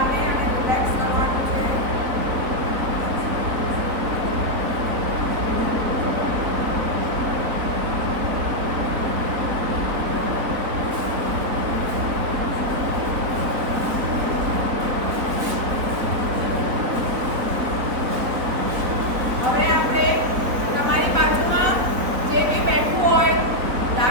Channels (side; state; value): left; late; 4.1 ms